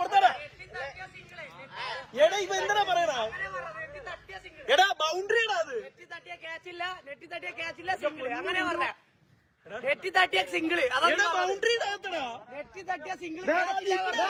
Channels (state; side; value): identical; both; correlation 1.00